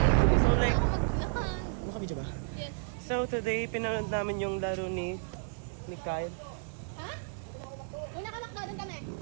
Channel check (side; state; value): left; silent; digital silence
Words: So like, Maglakad. nakabidyo ba? Yes. So today, pinanood namin yung laro ni Kyle. Ha? Muna ka nakdadan kami.